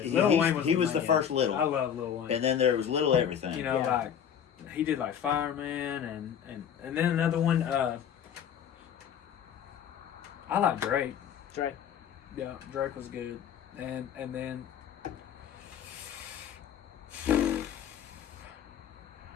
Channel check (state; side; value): quieter; right; 8.7 dB